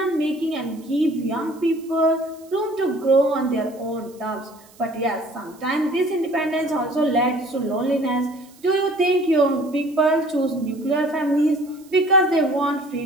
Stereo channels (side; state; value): right; noise; hiss, 27 dB below the sound